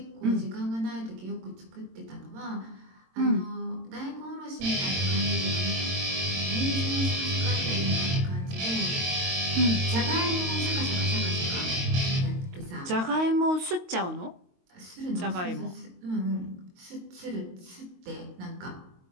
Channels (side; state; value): left; late; 22 ms